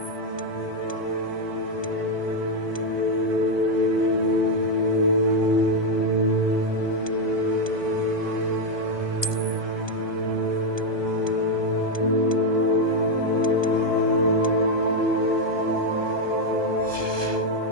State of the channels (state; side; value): late; right; 1.2 ms